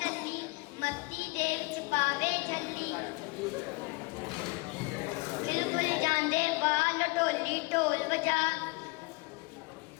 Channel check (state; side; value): quieter; right; 27.1 dB